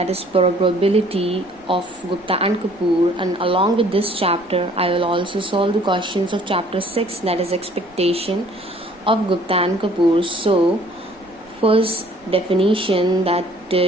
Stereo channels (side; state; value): right; noise; rumble, 29 dB below the sound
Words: is probability of Gupta and Kapoor, and along with this chapter I will also solve the questions of chapter 6, that is expectation of Gupta and Kapoor. So first definition that